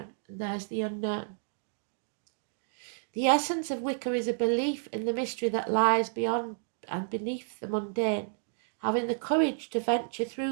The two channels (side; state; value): left; silent; digital silence